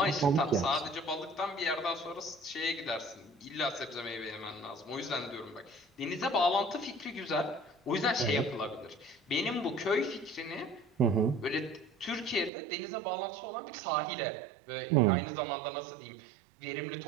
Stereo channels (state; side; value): drops out; left; at 12.5 s